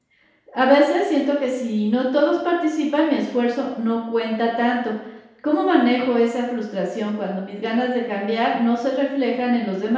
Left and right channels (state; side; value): identical; both; correlation 1.00